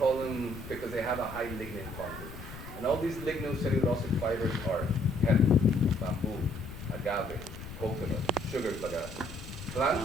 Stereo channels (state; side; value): noise; left; rumble, 12 dB below the sound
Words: them because they have a high lignin content. And all these lignocellulosic fibers are hemp, bamboo, agave, coconut, sugar bagasse.